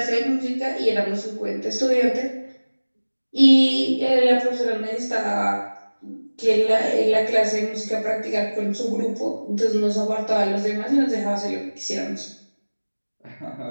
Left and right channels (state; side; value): inverted; both; correlation -1.00